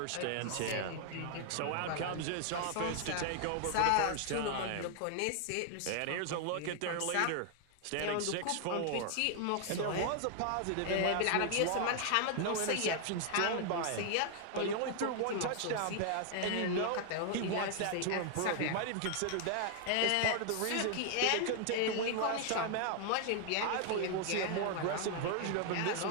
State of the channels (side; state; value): both; different; correlation 0.00